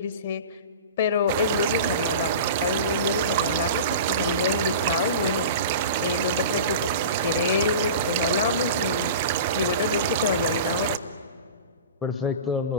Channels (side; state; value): both; inverted; correlation -0.33